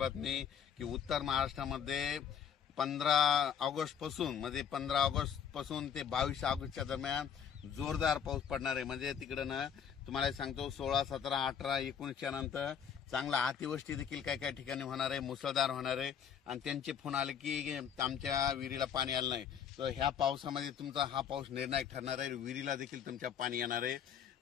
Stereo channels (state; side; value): quieter; right; 8.1 dB